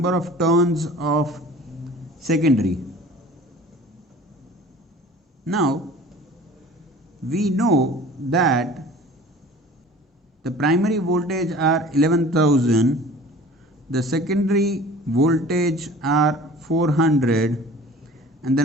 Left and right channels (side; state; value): both; normal; correlation 0.45